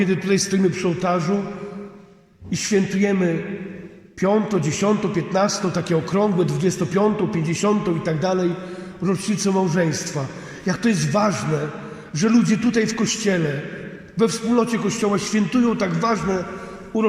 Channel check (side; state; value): both; identical; correlation 1.00